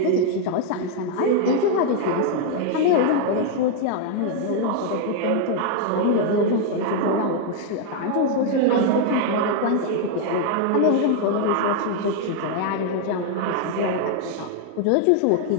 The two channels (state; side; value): different; both; correlation 0.00